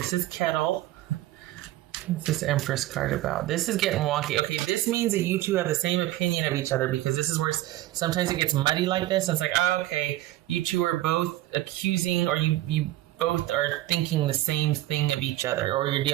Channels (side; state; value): left; quieter; 15.7 dB